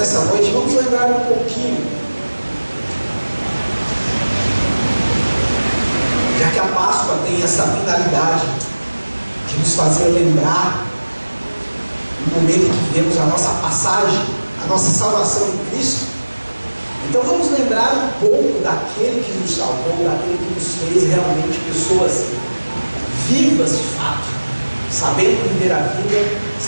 noite vamos lembrar um pouquinho, já que a Páscoa tem essa finalidade de nos fazer lembrar no momento em que vivemos a nossa passagem, a nossa salvação em Cristo. Então vamos lembrar um pouco daquele que nos salvou, daquele que nos fez realmente pessoas vivas de fato, sabendo viver a vida,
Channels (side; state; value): both; inverted; correlation -1.00